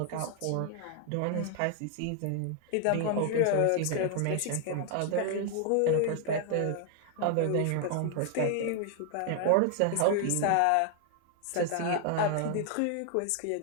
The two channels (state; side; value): different; both; correlation 0.00